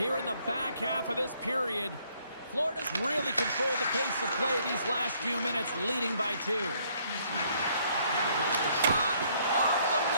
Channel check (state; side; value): inverted; both; correlation -0.66